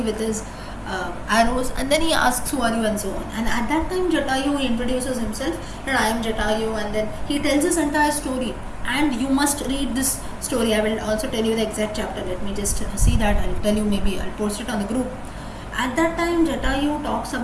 with his arrows, and then he asks who are you and so on. And at that time Jatayu introduces himself that I am Jatayu, and then he tells his entire story. And you must read this story. I will also tell you the exact chapter. Let me just see that. I'll tell you, maybe I'll post it on the group. At that time Jatayu talks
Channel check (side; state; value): both; identical; correlation 1.00